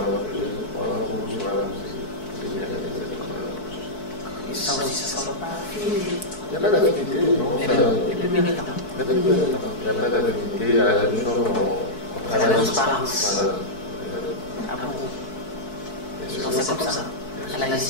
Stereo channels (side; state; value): right; late; 4.6 ms